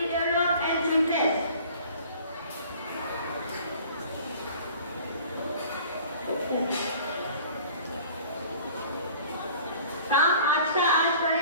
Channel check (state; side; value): inverted; both; correlation -0.48